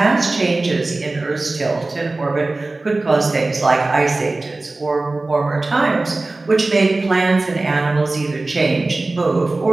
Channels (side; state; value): left; quieter; 3.2 dB